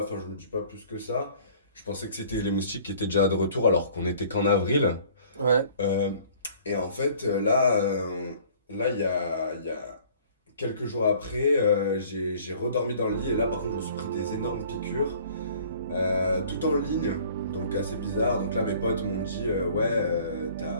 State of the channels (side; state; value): both; inverted; correlation -0.52